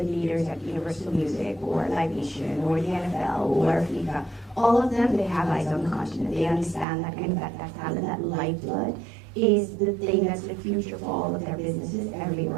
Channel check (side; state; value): left; drops out; at 6.9 s